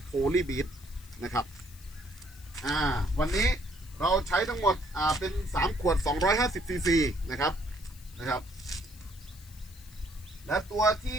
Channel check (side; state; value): left; noise; hiss, 22 dB below the sound